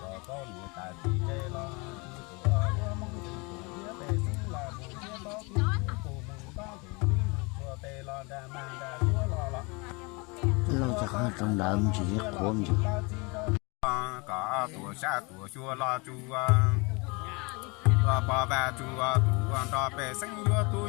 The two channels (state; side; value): quieter; right; 28.5 dB